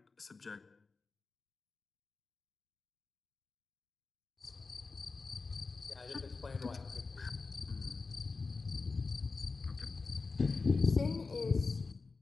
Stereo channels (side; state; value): right; quieter; 4.2 dB